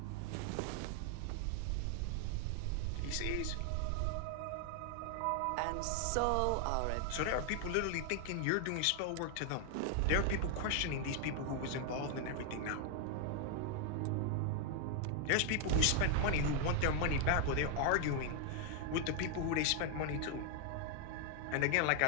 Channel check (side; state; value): both; different; correlation 0.00